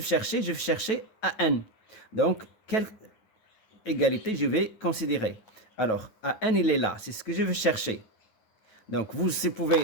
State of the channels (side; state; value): right; late; 9.2 ms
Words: chercher? Je vais chercher AN. Donc, quelle égalité je vais considérer? Alors, AN, il est là. C'est ce que je vais chercher. Donc, vous